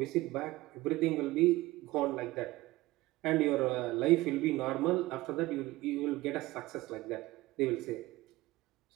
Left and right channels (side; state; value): left; quieter; 18.9 dB